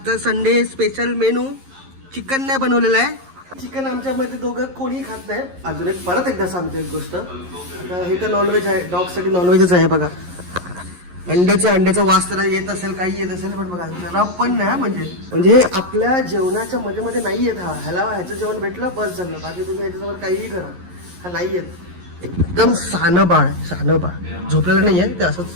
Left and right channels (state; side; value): late; left; 11 ms